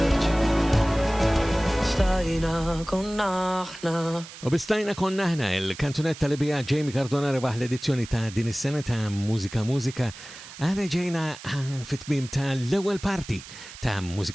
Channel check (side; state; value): right; noise; hiss, 15 dB below the sound